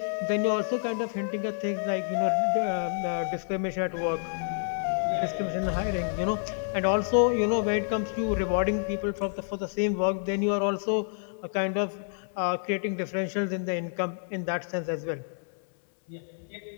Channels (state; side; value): silent; right; digital silence